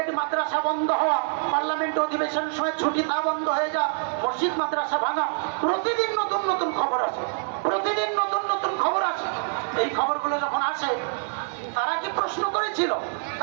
মাদ্রাসা বন্ধ হওয়া, পার্লামেন্ট অধিবেশনের সময় ছুটি তা বন্ধ হয়ে যা, মসজিদ মাদ্রাসা ভাঙা, প্রতিদিন নতুন নতুন খবর আসে, প্রতিদিন নতুন নতুন খবর আসে। এই খবরগুলো যখন আসে তারা কি প্রশ্ন করেছিল?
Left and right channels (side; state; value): left; silent; digital silence